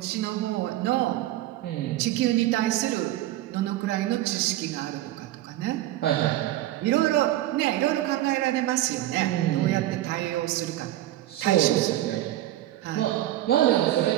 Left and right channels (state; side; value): quieter; left; 14.7 dB